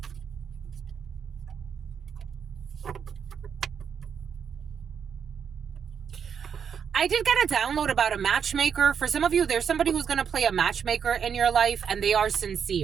I did get a download about a matchmaker. For some of you, there's somebody who's going to play a matchmaker in your life, and they are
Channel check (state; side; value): quieter; left; 7.3 dB